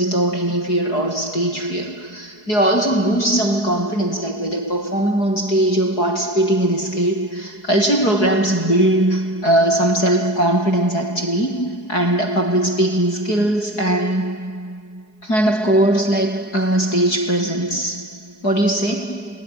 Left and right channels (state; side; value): late; right; 4.7 ms